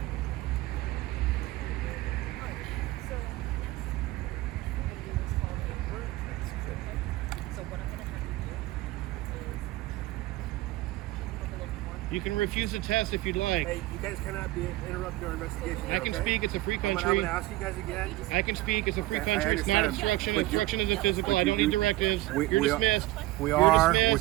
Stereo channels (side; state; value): left; quieter; 17.9 dB